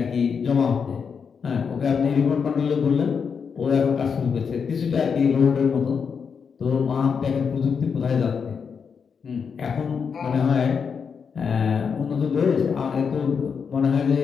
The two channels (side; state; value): right; quieter; 6.2 dB